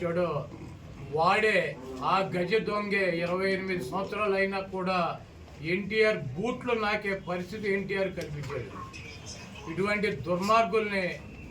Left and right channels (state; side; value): identical; both; correlation 1.00